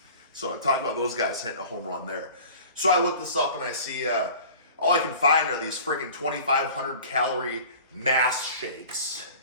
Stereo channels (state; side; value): inverted; both; correlation -0.42